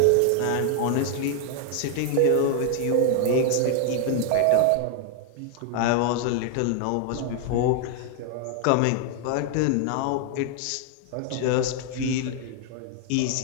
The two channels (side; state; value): both; different; correlation 0.00